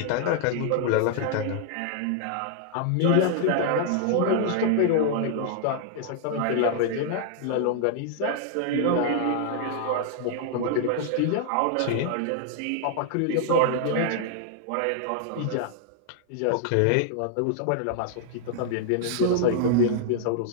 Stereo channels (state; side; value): different; both; correlation -0.01